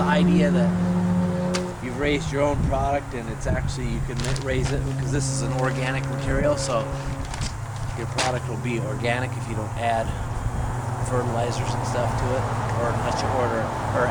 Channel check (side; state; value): both; identical; correlation 1.00